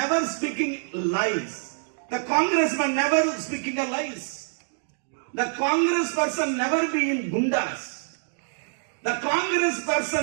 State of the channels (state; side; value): silent; left; digital silence